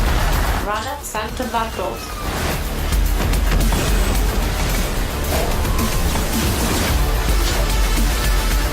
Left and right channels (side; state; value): both; identical; correlation 1.00